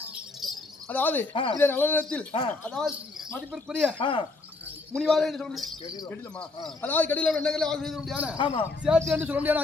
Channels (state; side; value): quieter; right; 3.5 dB